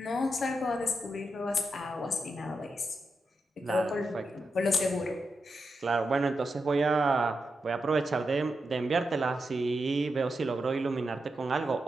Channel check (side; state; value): both; normal; correlation 0.87